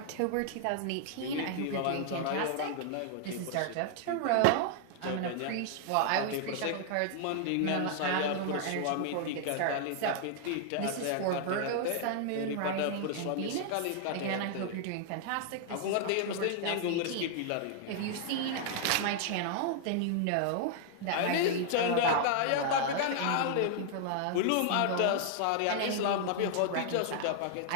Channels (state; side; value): different; both; correlation 0.00